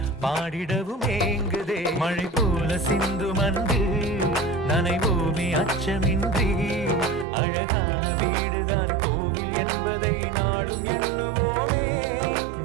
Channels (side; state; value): left; drops out; at 7.2 s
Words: பாடிடவும் ஏங்குதே. மழை போல சிந்தும் அன்று நனைவோமே அச்சமின்றி. அழகான வீடுதான் கோவில் என்பதை நாளும் எண்ணுவோமே.